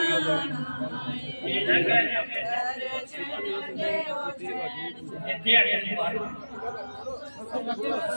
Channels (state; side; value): inverted; both; correlation -1.00